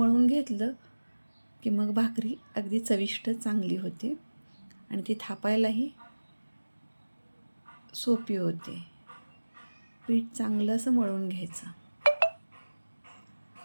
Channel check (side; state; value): both; inverted; correlation -1.00